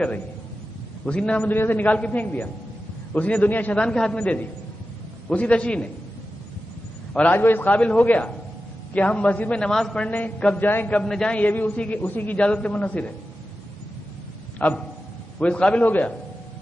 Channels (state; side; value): normal; both; correlation 0.92